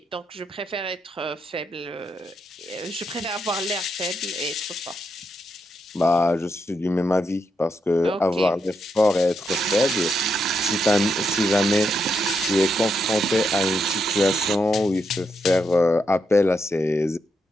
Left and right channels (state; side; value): normal; both; correlation 0.81